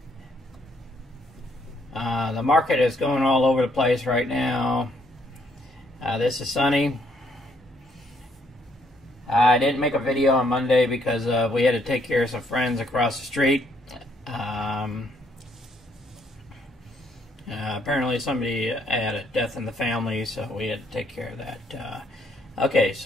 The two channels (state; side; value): normal; both; correlation 0.70